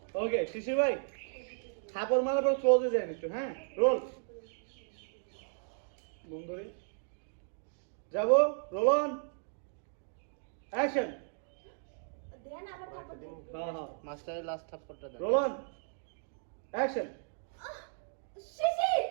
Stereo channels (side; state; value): left; silent; digital silence